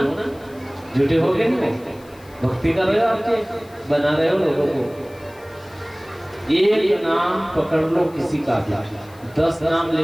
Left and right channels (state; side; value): noise; left; hiss, 26 dB below the sound